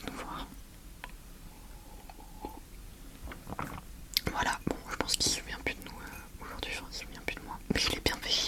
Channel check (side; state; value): both; identical; correlation 1.00